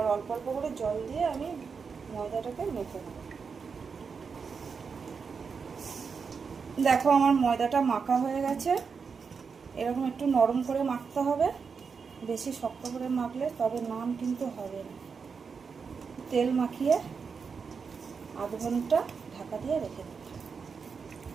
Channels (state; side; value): quieter; left; 5.6 dB